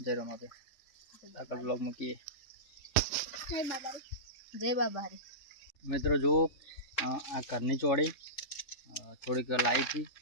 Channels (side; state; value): right; late; 3.7 ms